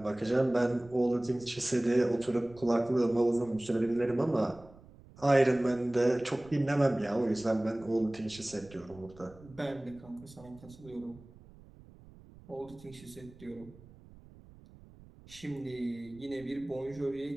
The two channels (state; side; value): noise; right; rumble, 22 dB below the sound